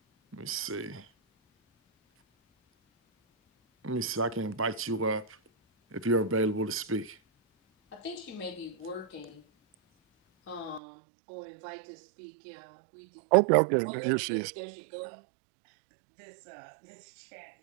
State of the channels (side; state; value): left; drops out; at 10.8 s